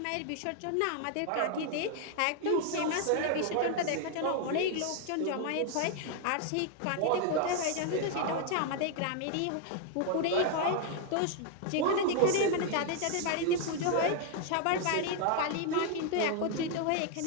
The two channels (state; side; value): different; both; correlation 0.00